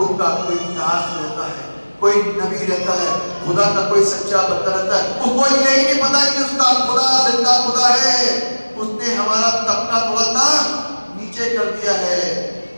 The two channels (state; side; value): inverted; both; correlation -1.00